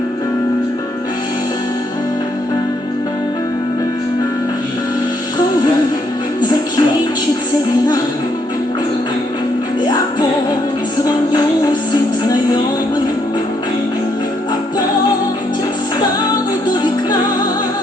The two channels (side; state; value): both; normal; correlation 0.73